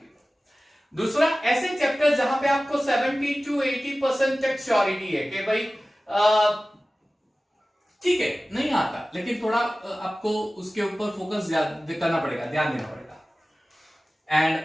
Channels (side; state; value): both; normal; correlation 0.97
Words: दूसरा ऐसे चैप्टर जहां पे आपको 70 to 80% तक श्योरिटी है कि भाई ठीक है नहीं आता, लेकिन थोड़ा आपको उसके ऊपर फोकस करना पड़ेगा, ध्यान देना पड़ेगा।